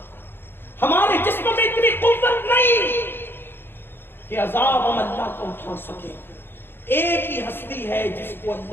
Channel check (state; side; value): late; right; 0.10 ms